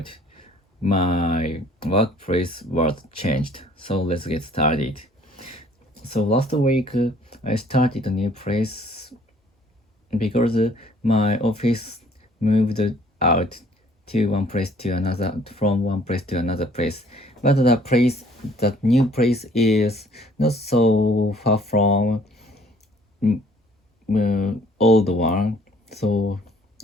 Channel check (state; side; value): normal; both; correlation 0.58